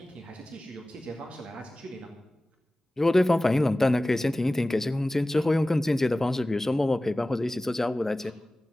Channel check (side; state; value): both; normal; correlation 0.97